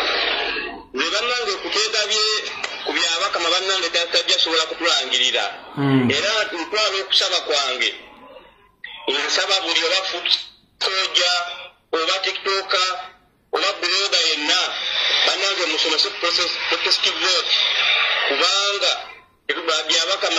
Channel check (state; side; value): identical; both; correlation 1.00